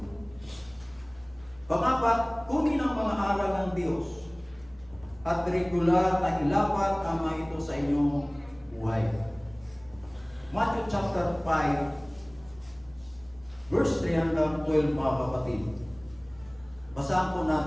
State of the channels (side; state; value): right; noise; hum, 27 dB below the sound